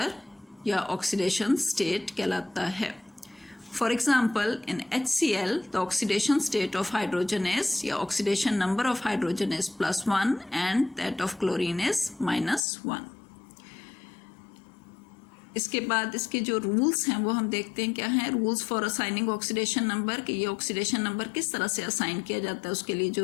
या ऑक्सीडेशन स्टेट कहलाता है. For example in HCl the oxidation state of hydrogen is या oxidation number of hydrogen is +1 and that of chlorine is -1. इसके बाद इसके जो रूल्स हैं वो हम देखते हैं क्या हैं. Rules for assigning oxidation number कि ये ऑक्सीडेशन नंबर किस तरह से असाइन किया जाता है उसके लिए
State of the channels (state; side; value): drops out; right; at 12.6 s